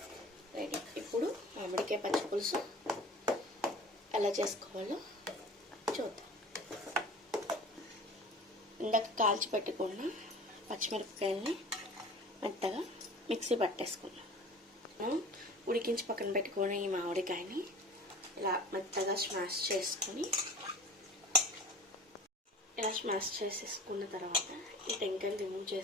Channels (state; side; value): normal; both; correlation 0.41